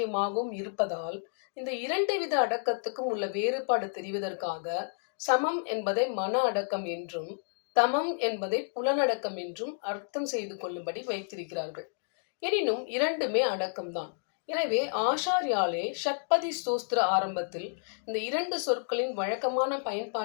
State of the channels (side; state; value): right; silent; digital silence